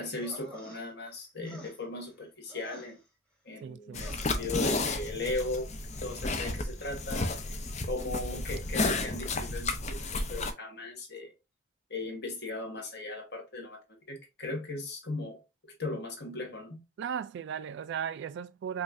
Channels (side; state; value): both; normal; correlation 0.28